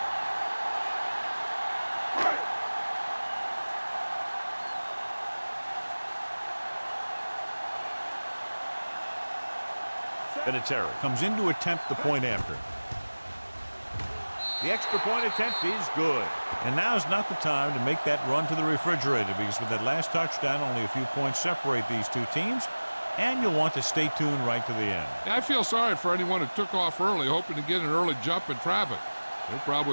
Vinatieri comes in to attempt the point after. The extra point attempt is good. And now's not the time to make that run to the refrigerator, because with that last touchdown, only a few points separate these two teams, and you'll want to stay tuned right to the end. I feel sorry for anyone who took off early hoping to get an early jump in traffic. They're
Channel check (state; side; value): inverted; both; correlation -1.00